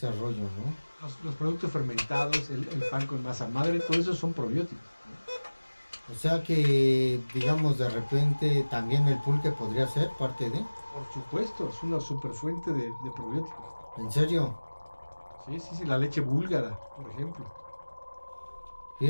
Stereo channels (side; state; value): both; inverted; correlation -1.00